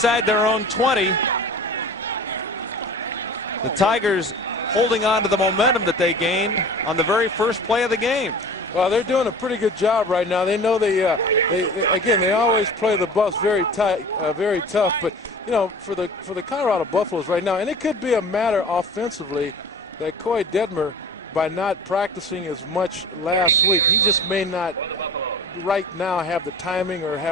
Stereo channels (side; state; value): both; normal; correlation 0.39